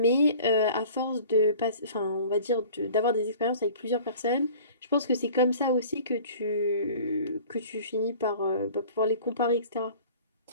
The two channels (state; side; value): inverted; both; correlation -0.45